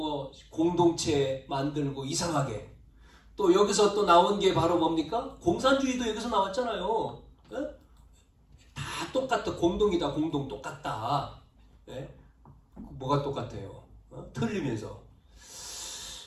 공동체 만들고 이상하게 또 여기서 또 나온 게 바로 뭡니까? 공산주의도 여기서 나왔잖아요. 다 똑같다. 공동이다. 공동 똑같다. 뭐가 똑같아요? 틀리면서.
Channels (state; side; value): identical; both; correlation 1.00